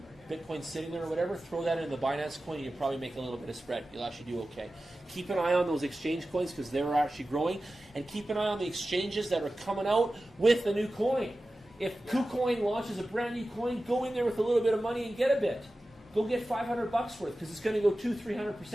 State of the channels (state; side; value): normal; both; correlation 0.95